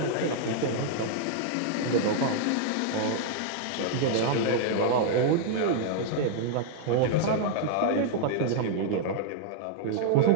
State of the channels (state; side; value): different; both; correlation 0.00